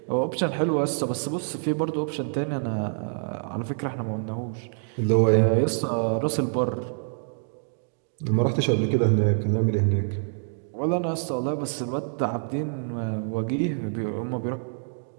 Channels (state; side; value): silent; left; digital silence